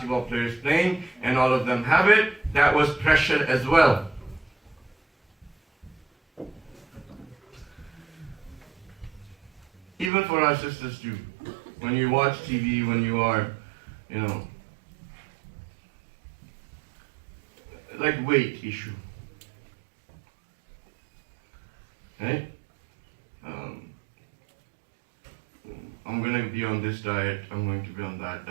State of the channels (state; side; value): drops out; left; at 10.1 s